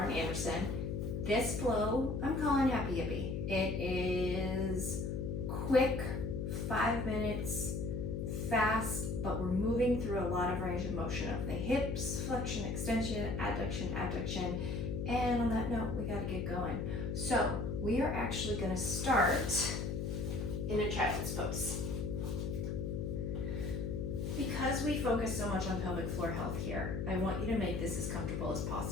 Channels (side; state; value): left; noise; hum, 2 dB below the sound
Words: Anderson. This flow I'm calling Happy Hippie. It is quick, 5 minutes, fast, but we're moving through a lot of range of motion of the hips, flexion, extension, adduction, abduction, and on that note, we gotta get going. So we are actually gonna start in a child's pose. Because we focus so much on pelvic floor health here, I want you to make this as comfortable as